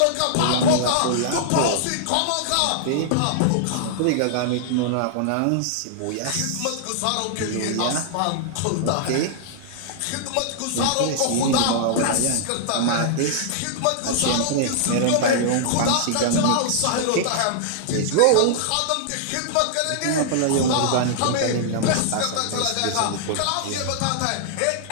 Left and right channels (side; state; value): both; different; correlation -0.01